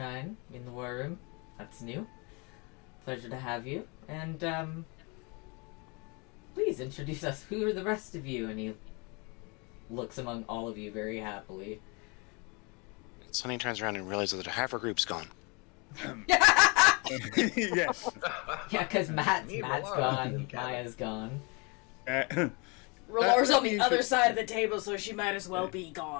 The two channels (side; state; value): right; quieter; 30.4 dB